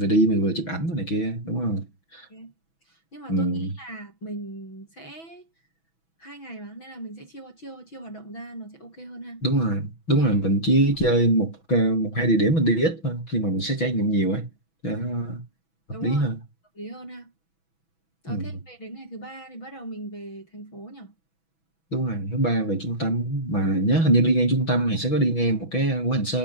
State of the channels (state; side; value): late; right; 6.1 ms